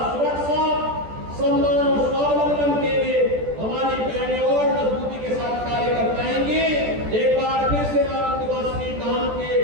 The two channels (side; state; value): left; late; 14 ms